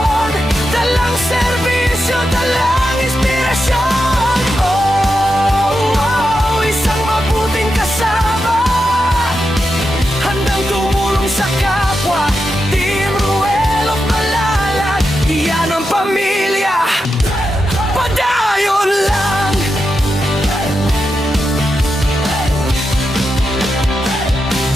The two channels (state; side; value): normal; both; correlation 0.87